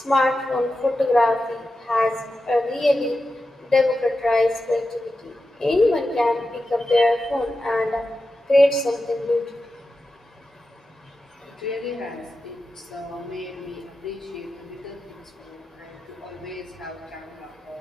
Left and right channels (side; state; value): both; normal; correlation 0.91